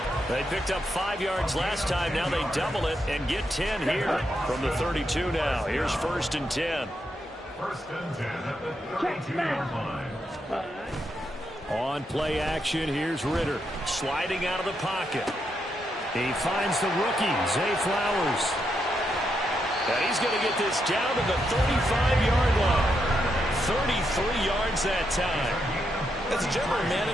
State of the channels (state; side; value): normal; both; correlation 0.81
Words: They picked up 5 yards last time. Now they double it and get 10 here from the 32 now. Here's 1st and 10. 1st and 10 at the 32-yard line. On play action, here's Ritter sliding out of the pocket. He finds the rookie, Zay Flowers. And he's going to get this down to the 35-yard line. 33 yards that time. As a general